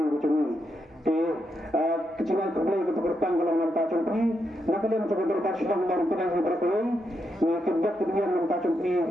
cumi kecingan kebeli ke bertang kalau nampak cumi nak kalian coba berkat sedang baru kena berkali ni kedap kemudian nampak cumi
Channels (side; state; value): both; normal; correlation 0.82